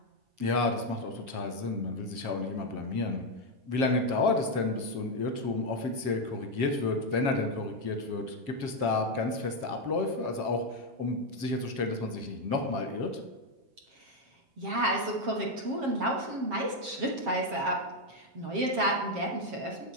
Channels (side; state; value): left; late; 7.5 ms